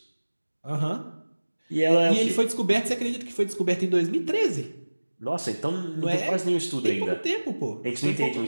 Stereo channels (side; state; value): both; inverted; correlation -1.00